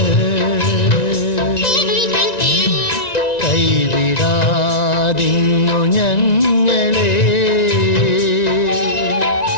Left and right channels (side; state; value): right; late; 1.9 ms